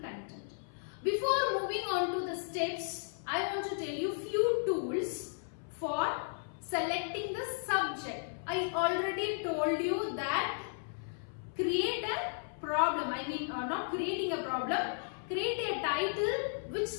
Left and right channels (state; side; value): silent; right; 55 dB below the other